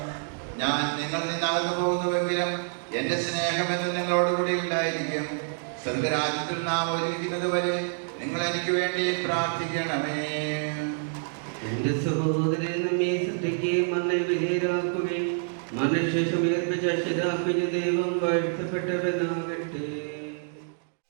ഞാൻ നിങ്ങളിൽ നിന്ന് അകന്നു പോകുന്നുവെങ്കിലും എന്റെ സ്നേഹമെന്ന് നിങ്ങളോടുകൂടി ഉണ്ടായിരിക്കും. സ്വർഗരാജ്യത്തിൽ നാം ഒരുമിക്കുന്നത് വരെ നിങ്ങൾ എനിക്ക് വേണ്ടി പ്രാർത്ഥിക്കണമേ. എന്റെ സഹോദരൻ നമ്മെ സൃഷ്ടിക്കുകയും നമ്മെ വിധേയരാക്കുകയും മനുഷ്യശേഷം ഏർപ്പിച്ച ദൈവം വാഴ്ത്തപ്പെട്ടവനാകട്ടെ.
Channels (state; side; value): silent; left; digital silence